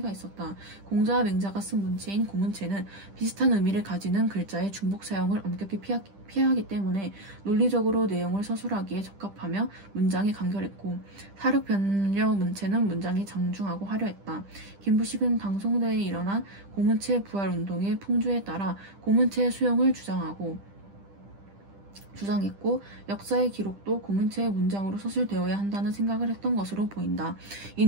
있었다. 공자와 맹자가 쓴 문체인 고문체는 비슷한 의미를 가지는 글자의 중복 사용을 엄격히 피하기 때문에 논리적으로 내용을 서술하기에 적합하며 문장이 간결했고 사륙변려 문체는 문장이 장중하고 화려했다. 김부식은 당송대에 일어난 고문체 부활운동의 풍조에 따라 고문체의 수용을 주장했고 역사의 기록도 고문체의 문장으로 서술되어야 한다는 생각을 했던 것으로 보인다.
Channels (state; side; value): late; left; 10 ms